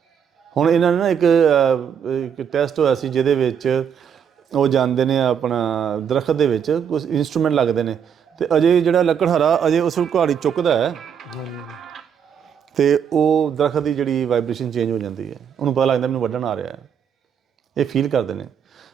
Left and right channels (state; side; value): quieter; left; 7.9 dB